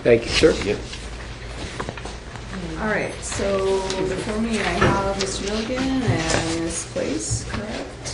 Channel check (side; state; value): both; identical; correlation 1.00